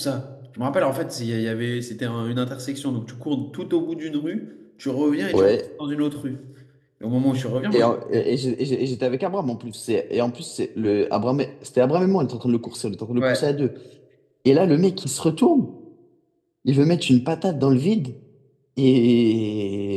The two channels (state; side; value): identical; both; correlation 1.00